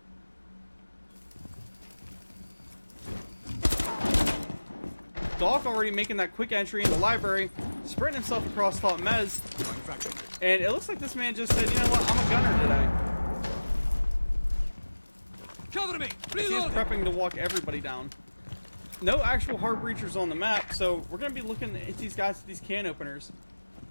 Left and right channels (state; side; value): inverted; both; correlation -1.00